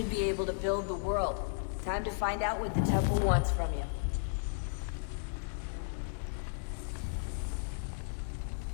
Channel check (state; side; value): silent; right; digital silence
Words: be able to build the world. Time to find out what the temple wants from you.